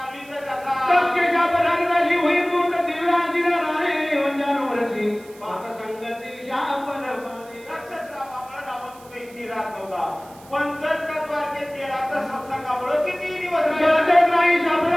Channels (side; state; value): right; noise; hiss, 24 dB below the sound